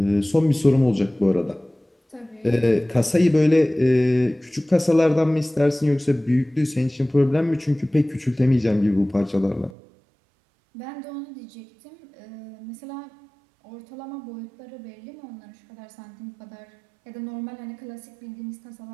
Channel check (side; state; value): left; drops out; at 9.8 s